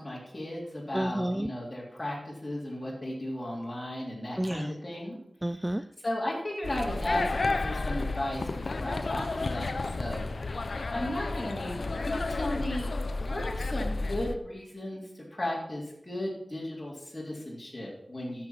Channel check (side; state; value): both; normal; correlation 0.97